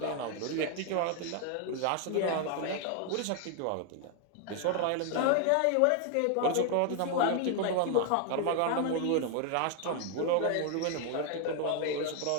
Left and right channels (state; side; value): different; both; correlation 0.00